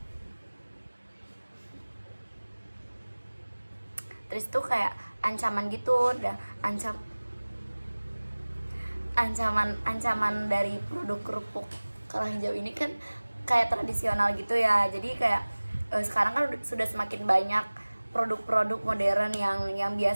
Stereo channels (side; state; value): both; inverted; correlation -1.00